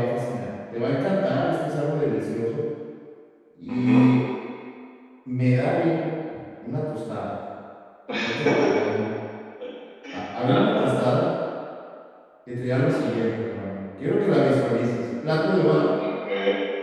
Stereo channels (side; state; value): both; identical; correlation 1.00